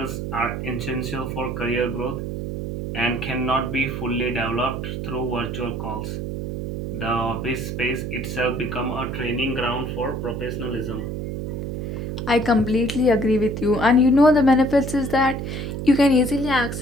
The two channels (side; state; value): right; noise; hum, 4 dB below the sound